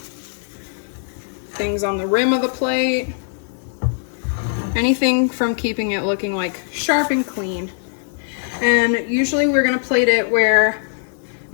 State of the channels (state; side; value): silent; right; 65 dB below the other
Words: things on the rim of the plate, anything from keeping it looking like sharp and clean. And usually we're gonna plate it where